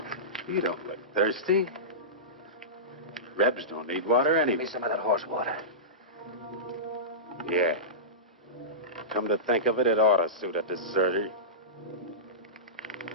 You don't look thirsty. Rebs don't need water anyway. Give me some of that horse water. Yeah. Come to think of it, it ought to suit a deserter.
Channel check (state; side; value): normal; both; correlation -0.18